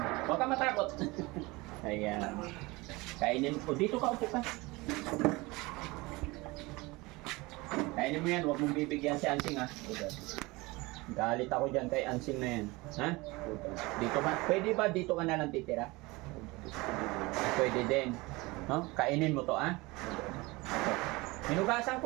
Huwag ka matakot. Ayan. Kainin mo. Dito ka, upo ka. Kainin mo yan, huwag mong bibigyan si Ansing, ha? Galit ako dyan kay Ansing na yan. Ha? Dito ba? Pwede ba dito ka na lang titira? Pwede din. No? Kainin mo to, ha? Hinugasan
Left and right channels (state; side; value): quieter; left; 23.0 dB